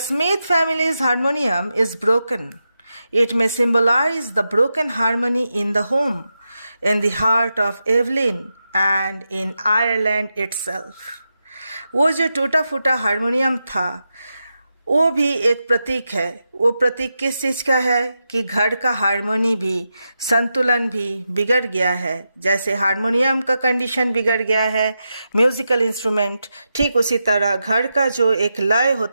family's harmonium is broken. It may symbolize the broken harmony in the home, in the heart of Evelyn and in Ireland itself. वो जो टूटा फूटा harmonium था वो भी एक प्रतीक है। वो प्रतीक किस चीज़ का है कि घर का हारमोनी भी, संतुलन भी बिगड़ गया है। जैसे हारमोनियम का कंडीशन बिगड़ गया है, म्यूज़िकल इंस्ट्रूमेंट, ठीक उसी तरह घर का जो एक लय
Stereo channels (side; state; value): both; inverted; correlation -0.88